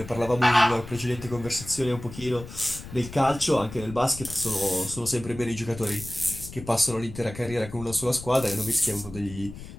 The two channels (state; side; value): noise; left; rumble, 13 dB below the sound